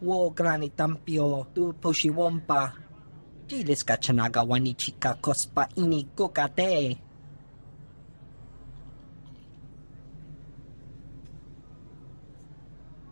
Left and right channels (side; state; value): both; inverted; correlation -1.00